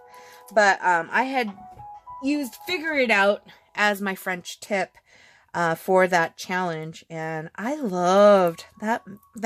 But I had used Fig-ure It Out as my French tip for that challenge, and I loved that.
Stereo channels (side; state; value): both; identical; correlation 1.00